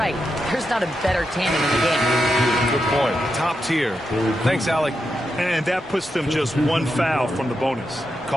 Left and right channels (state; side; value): normal; both; correlation 0.86